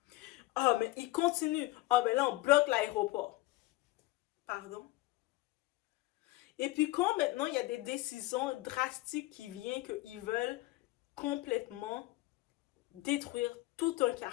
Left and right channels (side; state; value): right; quieter; 19.3 dB